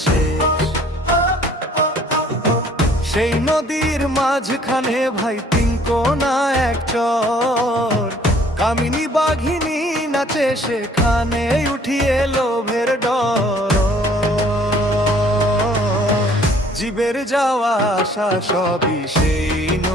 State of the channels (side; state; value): both; normal; correlation 0.57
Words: শেষ। সেই নদীর মাঝখানে ভাই 3 কোনা এক চর, কামিনী বাঘিনী নাচে সেখানে উঠিয়ে লোভের ডর। জীবের যাওয়া আসা সবই সেই